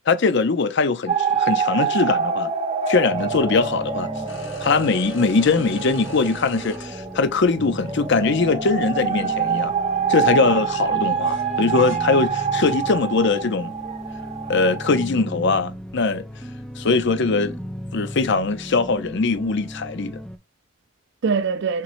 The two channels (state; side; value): normal; both; correlation 0.04